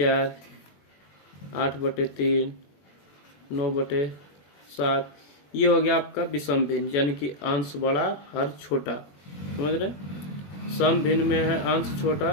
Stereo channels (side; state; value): right; late; 21 ms